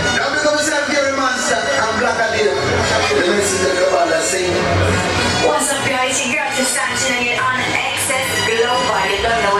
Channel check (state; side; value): identical; both; correlation 1.00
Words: Now we come to San Gary Monster and Blackout. The message that come out that same. What's up, guys? Your girl just tuning in on Excess Global. You don't know